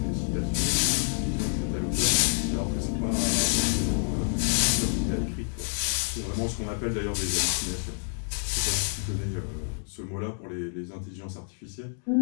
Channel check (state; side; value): silent; right; 59 dB below the other